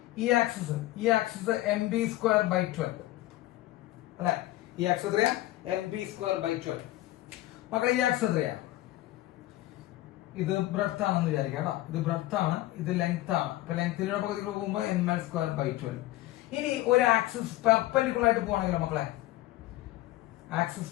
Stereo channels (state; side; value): quieter; right; 16.7 dB